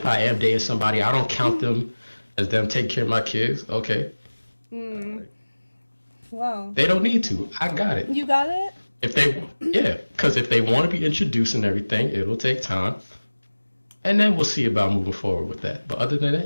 I am dating somebody, I don't count them as them taking care of my kids, okay. Wow. They don't need to. I got it. You got it? Because if they want to be introduced and everything, it'll take time. And then we'll see about moving forward with that. But other than that,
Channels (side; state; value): both; inverted; correlation -1.00